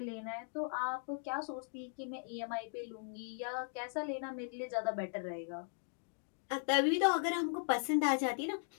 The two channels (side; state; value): right; silent; digital silence